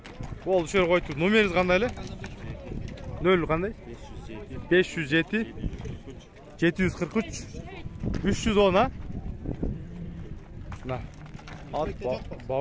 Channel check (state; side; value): identical; both; correlation 1.00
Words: Oldu şöyle koydu. Numeriniz kandaylı? Ne öyle kanday? 507 743 310 ha? Na. At